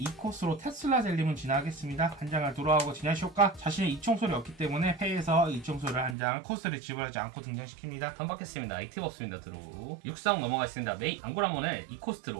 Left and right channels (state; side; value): drops out; left; at 6.2 s